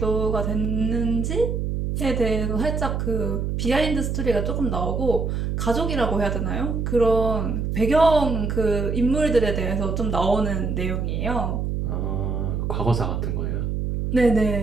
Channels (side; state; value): right; noise; hum, 1 dB below the sound